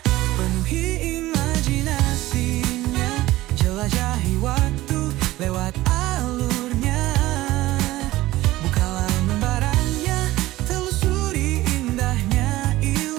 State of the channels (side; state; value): left; quieter; 17.1 dB